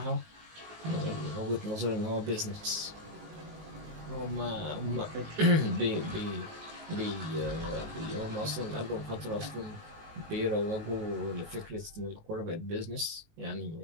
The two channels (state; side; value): late; left; 19 ms